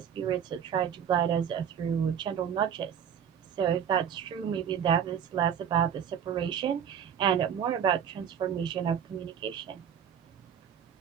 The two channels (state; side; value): quieter; left; 8.5 dB